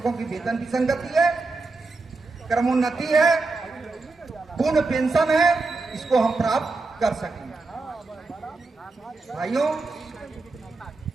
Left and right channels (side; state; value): left; quieter; 3.6 dB